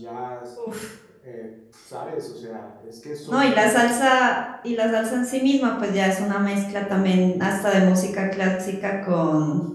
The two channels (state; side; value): identical; both; correlation 1.00